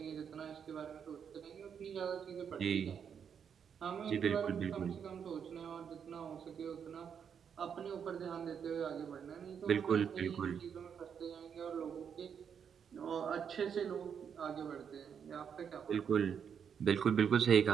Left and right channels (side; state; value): left; quieter; 7.5 dB